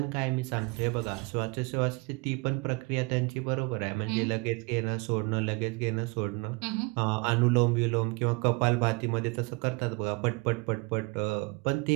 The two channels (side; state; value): left; quieter; 27.5 dB